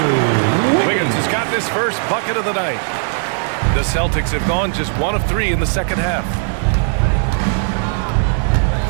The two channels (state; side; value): silent; left; 68 dB below the other